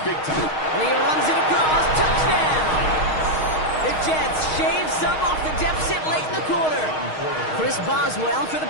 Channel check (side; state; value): right; late; 6.4 ms